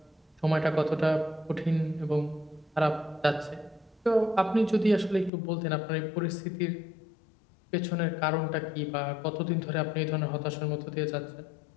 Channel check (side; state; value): right; drops out; at 5.3 s